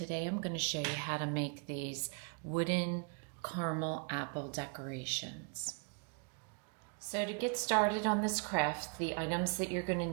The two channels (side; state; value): left; quieter; 38.7 dB